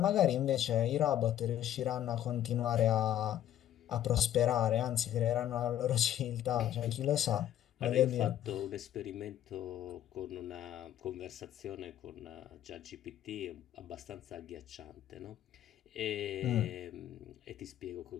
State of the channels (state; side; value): quieter; right; 11.7 dB